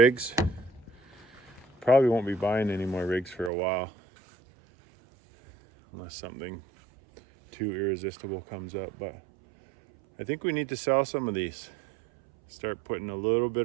Probably won't be buying any more rigs for a while, unless something too irresistible comes up. But I think we need to sell some of these. Start putting a little bit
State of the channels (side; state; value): left; drops out; at 3.5 s